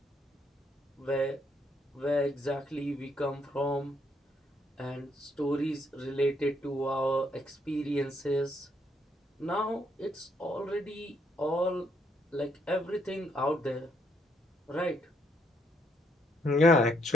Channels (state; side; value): normal; both; correlation 0.73